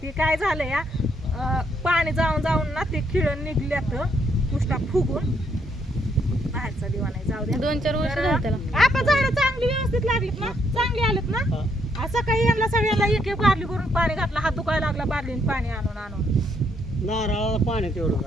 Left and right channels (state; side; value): normal; both; correlation 0.73